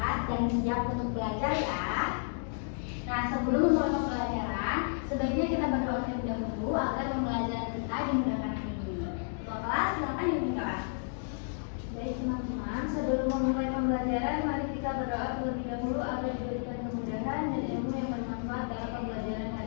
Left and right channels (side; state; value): right; silent; digital silence